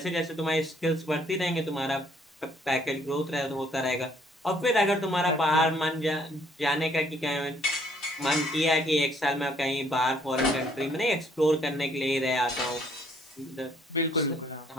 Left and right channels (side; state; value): both; normal; correlation 0.64